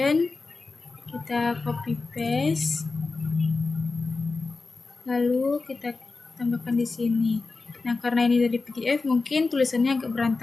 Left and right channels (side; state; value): right; quieter; 3.8 dB